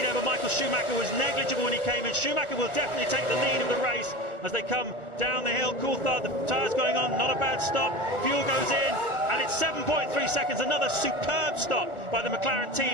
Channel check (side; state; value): right; late; 1.2 ms